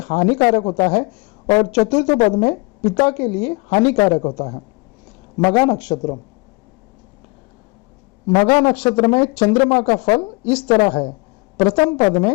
हानिकारक होता है और चतुर्थ पद में पिता के लिए हानिकारक होता है। मघा नक्षत्र, मघा नक्षत्र में चंद्रमा का फल इस तरह है। प्रथम पद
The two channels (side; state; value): right; quieter; 27.1 dB